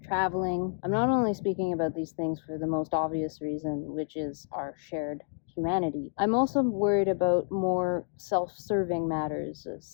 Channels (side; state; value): right; silent; 58 dB below the other